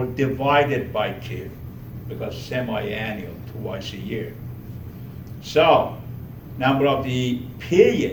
divided by 2, because semi-annual, twice a year. So, number of the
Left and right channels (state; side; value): identical; both; correlation 1.00